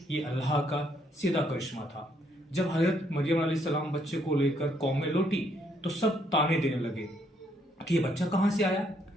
ये अल्लाह का सीधा करिश्मा था। जब हजरत मरियम अलैहिस्सलाम बच्चे को लेकर कौम में लौटी तो सब ताने देने लगे कि ये बच्चा कहाँ से आया।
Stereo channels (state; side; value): normal; both; correlation 0.71